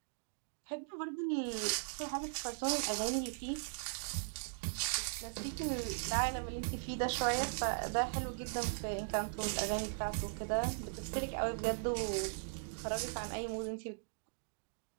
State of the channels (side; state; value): left; silent; digital silence